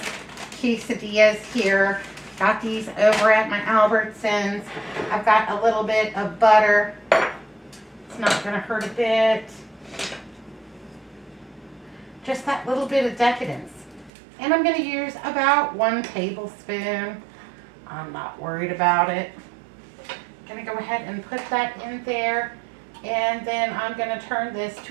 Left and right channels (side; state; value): left; drops out; at 14.1 s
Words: quesadillas here. Got these over at my Albertsons. I've got a little bit of butter. It's not going to hurt a bit. Just that little bit of decadence. And I'm going to use about 1 tablespoon. I'm not worried about it. I'm going to go ahead and put that in there. And then I'm going to turn this